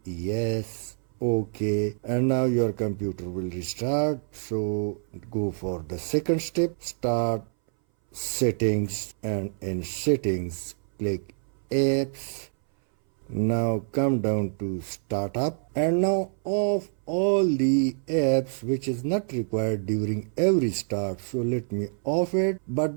yes, OK, and now your computer will restart. So go for the second step, start settings, and in settings click apps. Now come down to startup and now off all the apps which is not required during every start. So let me off it,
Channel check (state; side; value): silent; left; 60 dB below the other